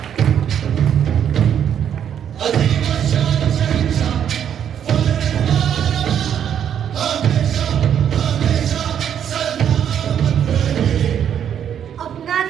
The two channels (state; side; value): quieter; left; 9.1 dB